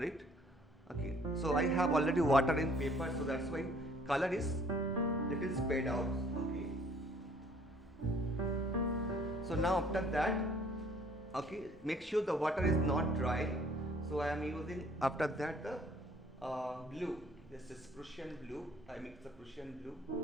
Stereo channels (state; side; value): normal; both; correlation 0.58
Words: Okay. So I have already water in paper, so that's why color is little spread out. Okay. So now after that, okay, make sure the water is not dry. So I am using after that the blue. This is Prussian blue. I mix the Prussian blue,